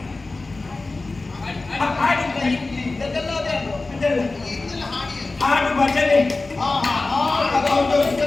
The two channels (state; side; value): quieter; right; 3.4 dB